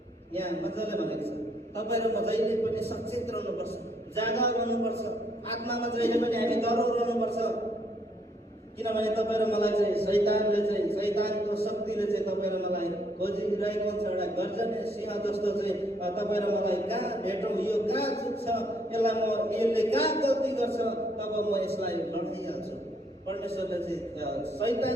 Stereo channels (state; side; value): normal; both; correlation 0.70